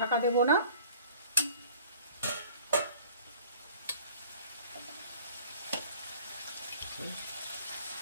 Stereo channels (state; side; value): inverted; both; correlation -0.49